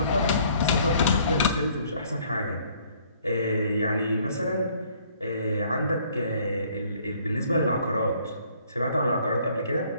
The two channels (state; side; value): inverted; both; correlation -0.61